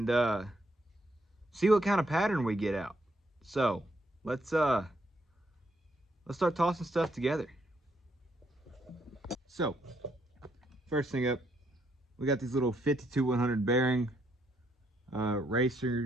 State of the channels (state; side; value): normal; both; correlation 0.74